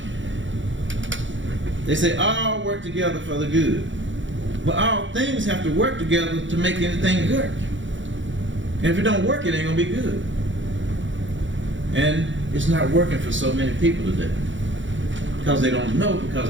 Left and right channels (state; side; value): late; left; 0.55 ms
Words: they say all work together for the good. But all things have to work together to make anything work. And if it don't work, it ain't gonna be good. And it's not working for so many people today. Because they don't know,